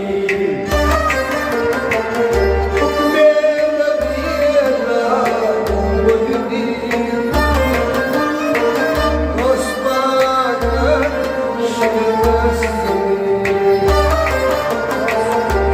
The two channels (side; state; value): both; identical; correlation 1.00